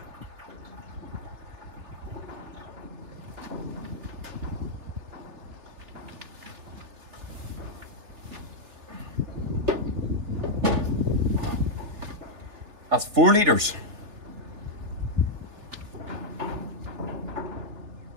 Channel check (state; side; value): late; left; 3.3 ms